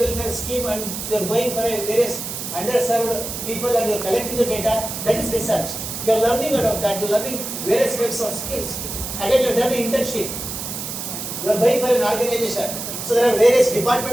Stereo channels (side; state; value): right; noise; hiss, 6 dB below the sound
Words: scheme and you are going for a various underserved people and you are collecting the data. That is research. You are learning out of that. You are learning various types of skills. Again, you have done an internship. You are going for an organization. So there are various